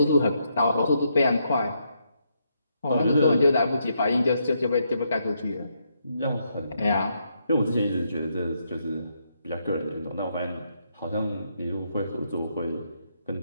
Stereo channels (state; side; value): inverted; both; correlation -0.78